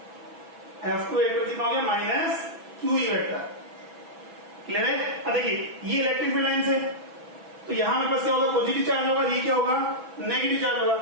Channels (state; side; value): late; left; 6.1 ms